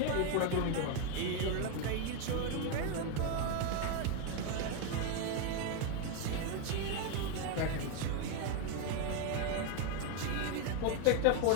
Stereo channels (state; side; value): different; both; correlation 0.02